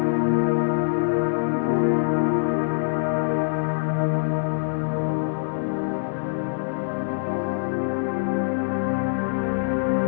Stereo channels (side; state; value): right; silent; digital silence